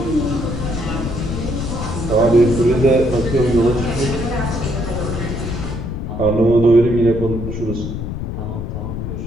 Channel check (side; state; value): left; noise; rumble, 5 dB below the sound